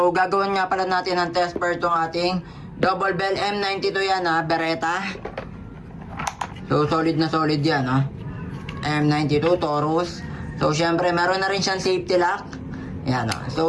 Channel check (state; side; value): identical; both; correlation 1.00